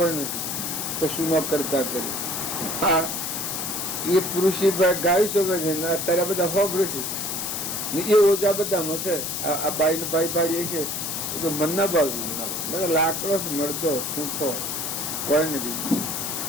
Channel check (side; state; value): left; noise; hiss, 3 dB below the sound